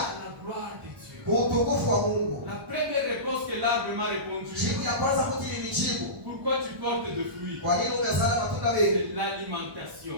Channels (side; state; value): left; late; 1.1 ms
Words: la gloire de Dieu. utukufu wa Mungu. La première réponse que l'arbre m'a répondu, Jibu ya kwanza mtu nilijibu, pourquoi tu portes de fruits? kwa nini umezala matunda mengi? C'est